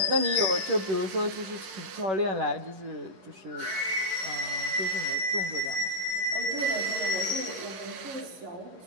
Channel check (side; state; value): left; late; 11 ms